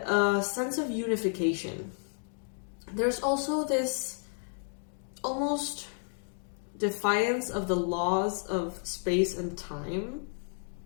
sense of unification. There's also this almost defiance of the laws of space and time,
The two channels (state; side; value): silent; right; 57 dB below the other